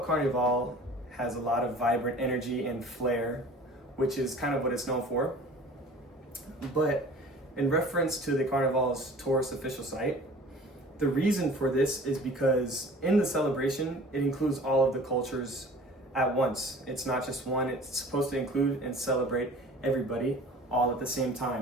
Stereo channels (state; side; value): normal; both; correlation 0.45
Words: has a lot of vibrant energy and flair, which is kind of what it's known for. But in reference to the Carnival's tourist official site, the reason for this is because in the celebration, it includes all of the cultures at once. It's not just one, it's supposed to include and celebrate everybody all at the same